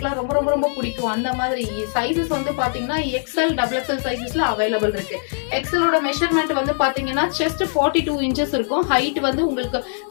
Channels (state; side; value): silent; right; digital silence